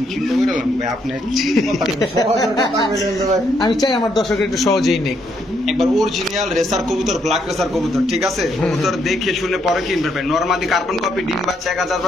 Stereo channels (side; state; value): both; normal; correlation 0.74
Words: চিন্তা করে লাম ভাই, আপনি সহজের কথা বলেন তো ভাই। আমি চাই আমার দর্শকের একটু সহজেই নেই। একবার অরিজিনাল রেসার কবুতর, ব্ল্যাক রেসার কবুতর, ঠিক আছে? কবুতর দেখে শুনে পরে কিনবে ভাই। নরমালি কার্বন কপি ডিম বাচ্চা